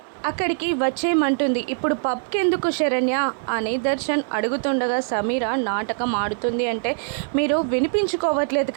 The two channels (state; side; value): silent; left; 64 dB below the other